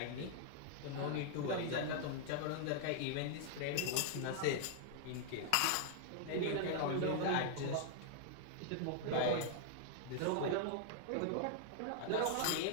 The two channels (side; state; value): both; different; correlation 0.00